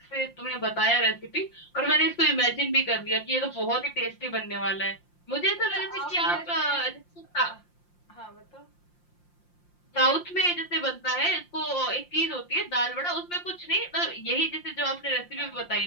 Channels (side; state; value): right; late; 5.7 ms